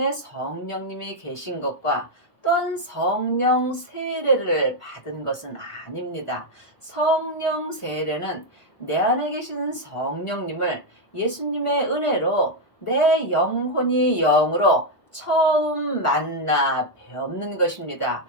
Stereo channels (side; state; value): right; late; 1.5 ms